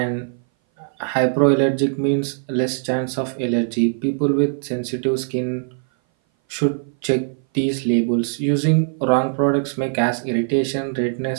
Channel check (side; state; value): left; silent; 59 dB below the other